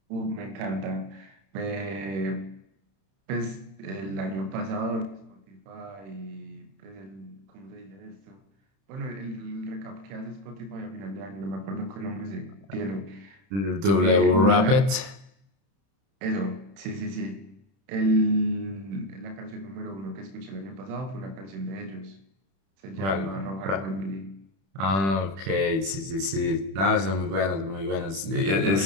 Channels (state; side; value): late; left; 31 ms